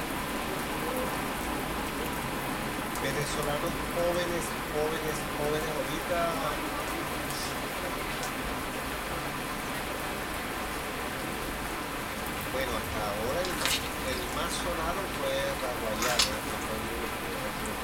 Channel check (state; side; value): identical; both; correlation 1.00